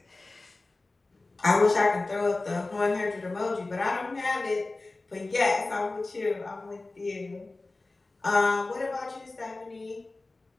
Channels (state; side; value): quieter; right; 3.2 dB